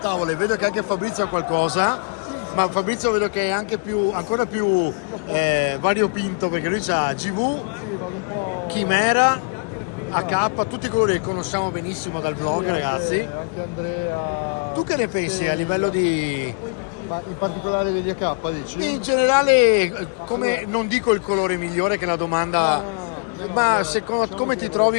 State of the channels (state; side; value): quieter; right; 36.2 dB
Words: e vedo che anche Fabrizio ha qualcosa, ma Fabrizio vedo che è anche ancora più variopinto, perché lui ha GV, Chimera, AK, tutti i colori che conosciamo benissimo dal vlog, ragazzi. Anche Andrea. Tu che ne pensi a livello di... Ma in particolare degli AK, dici? In generale, come non dico il colore migliore che è la domanda, No, ma allora, secondo, diciamo come che- ti